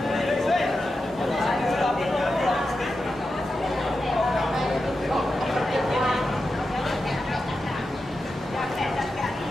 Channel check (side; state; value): both; normal; correlation 0.90